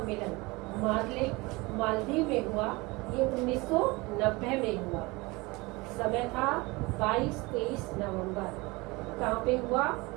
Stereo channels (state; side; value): quieter; left; 24.0 dB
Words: मालदीव में हुआ, ये 1990 में हुआ। समय था 22-23 नवंबर। कहाँ पे हुआ,